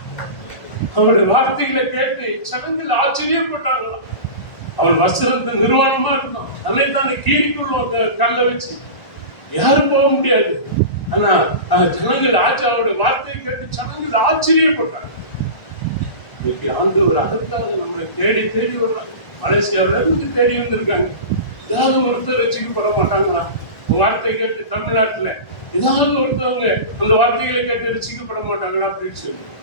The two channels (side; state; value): right; late; 1.5 ms